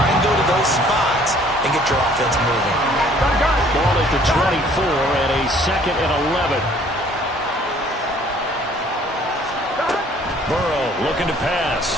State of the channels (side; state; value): both; normal; correlation 0.57